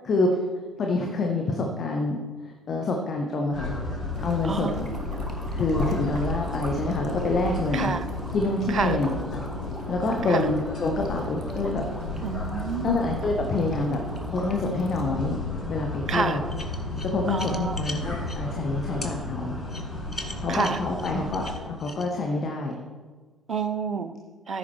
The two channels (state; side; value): normal; both; correlation 0.53